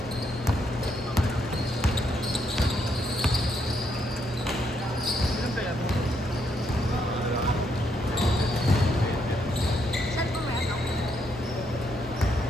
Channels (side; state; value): both; normal; correlation 0.76